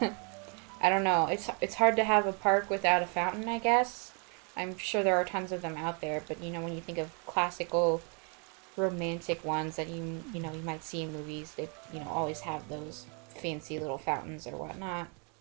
don't know. It's hard to have a park without a fountain, I guess. I'm sure there are tons of them out there, but, when you think of classical romantic ones that you might see in movies, they, always have those fancy little fountains or whatnot.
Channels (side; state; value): left; quieter; 37.1 dB